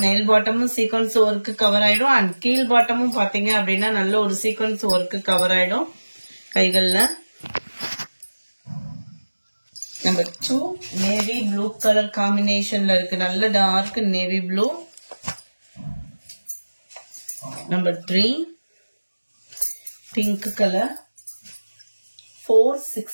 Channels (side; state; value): both; inverted; correlation -1.00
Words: மேல் பாட்டமும் சீக்வன்ஸ் ஒர்க்கு கவர் ஆயிடும். அண்ட் கீழ் பாட்டமும் பாத்தீங்க அப்படின்னா நல்ல ஒரு சீக்வன்ஸ் ஒர்க்கு கவர் ஆயிடும் கைகள்ல. நம்பர் 2, நேவி ப்ளூ கலர் காம்பினேஷன்ல இருக்கு, நல்ல dark navy blue. Number 3, pink colour,